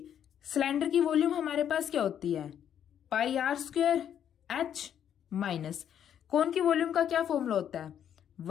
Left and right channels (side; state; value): right; quieter; 9.4 dB